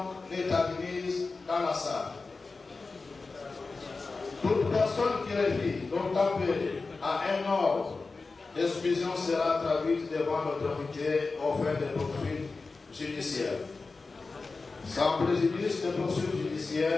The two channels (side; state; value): right; quieter; 4.0 dB